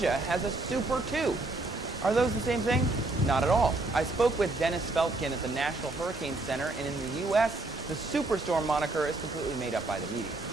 has a Super 2. Are those the same thing? Not at all. I spoke with Dennis Feltgen at the National Hurricane Center, and in the U.S., the superstorm moniker is completely made up by the media.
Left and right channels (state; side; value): quieter; left; 3.0 dB